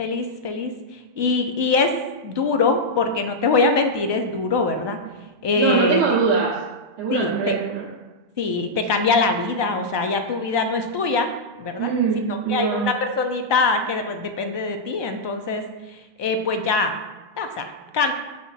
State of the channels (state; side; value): late; left; 1.2 ms